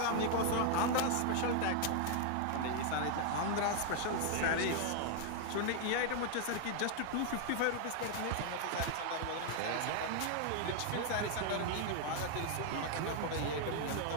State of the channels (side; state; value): both; different; correlation 0.00